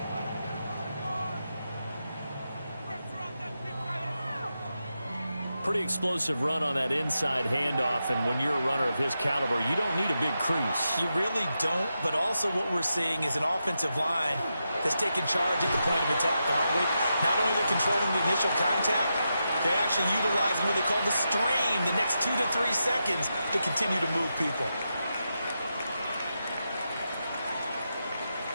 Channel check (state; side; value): inverted; both; correlation -0.87